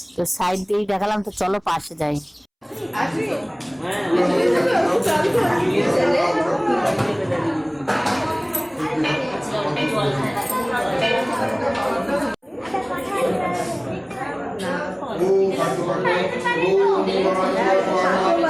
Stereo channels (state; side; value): identical; both; correlation 1.00